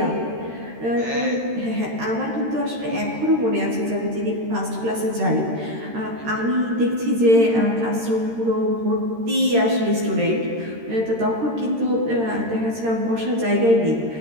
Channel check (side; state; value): left; late; 13 ms